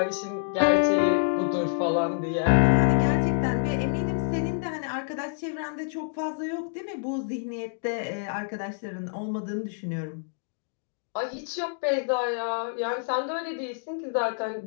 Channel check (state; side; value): silent; right; digital silence